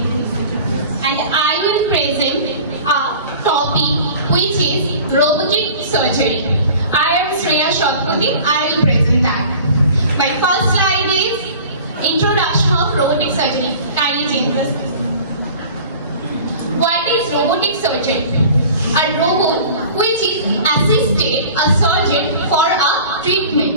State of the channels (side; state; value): both; inverted; correlation -0.43